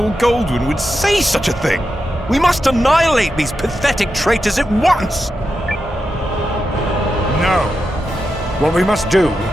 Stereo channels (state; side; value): normal; both; correlation 0.88